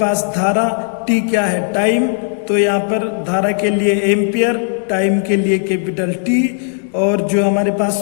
धारा, T क्या है टाइम। तो यहाँ पर धारा के लिए एम्पियर, टाइम के लिए कैपिटल T, और जो हमारे पास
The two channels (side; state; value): right; silent; digital silence